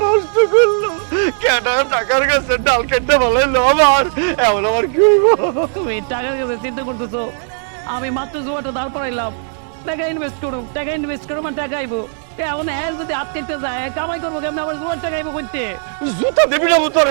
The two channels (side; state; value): left; silent; 67 dB below the other